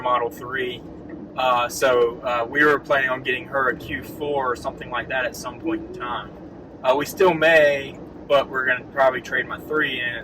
3. So we were planning on getting her a Q4 or something like that at some point in time. We still may, but we're going to probably trade my 3 in,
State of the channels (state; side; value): identical; both; correlation 1.00